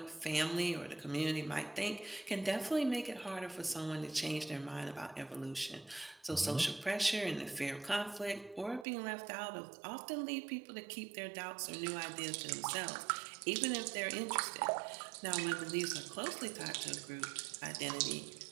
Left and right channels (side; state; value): left; drops out; at 8.8 s